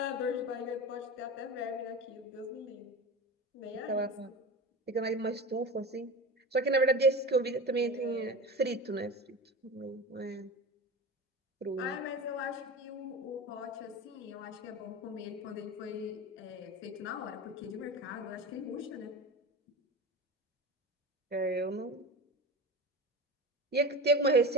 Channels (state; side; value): normal; both; correlation 0.29